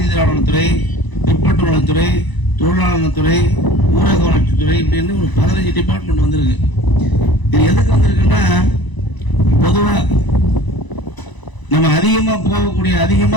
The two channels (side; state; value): right; late; 1.0 ms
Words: பிற்பட்டு நலத்துறை, தொழிலாளர் நலத்துறை, ஊரக வளர்ச்சித்துறை, இப்படின்னு ஒரு 15 டிபார்ட்மெண்ட் வந்திருக்கு. இது எதுக்கு வந்திருக்குன்னா, பொதுவாக நம்ம